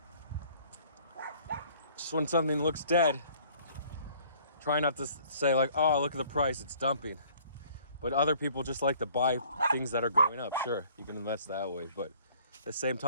just when something looks dead, try not to say like, oh, look at the price, it's dumping. But other people just like to buy things that are going up. Sure, you can invest that way. But at the same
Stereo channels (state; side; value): inverted; both; correlation -0.56